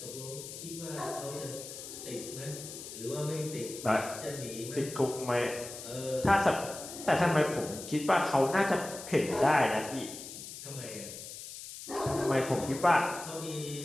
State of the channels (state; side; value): noise; left; hiss, 11 dB below the sound